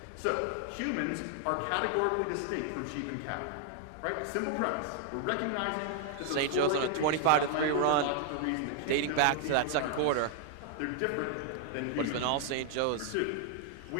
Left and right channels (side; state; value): both; different; correlation 0.00